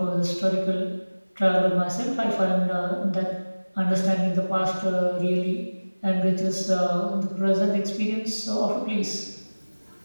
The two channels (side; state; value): both; inverted; correlation -1.00